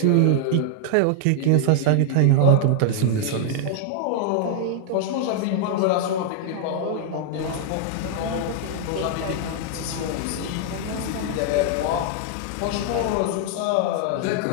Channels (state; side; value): different; both; correlation 0.00